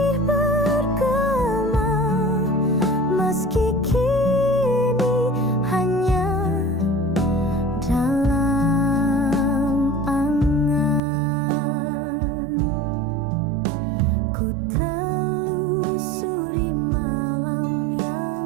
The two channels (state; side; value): drops out; left; at 11.0 s